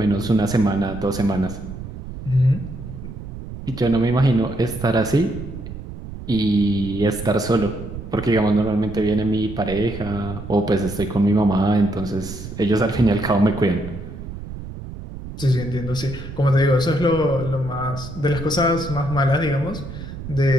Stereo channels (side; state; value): right; noise; rumble, 10 dB below the sound